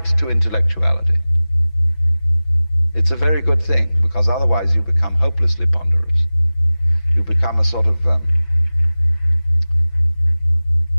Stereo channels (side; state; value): right; late; 6.0 ms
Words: to intellectuality. It's a very good thing, because otherwise you become hopelessly ponderous. You become a sort of a